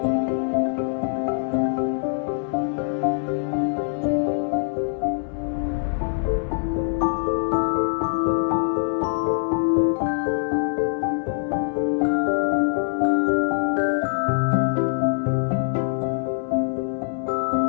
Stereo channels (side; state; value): right; silent; digital silence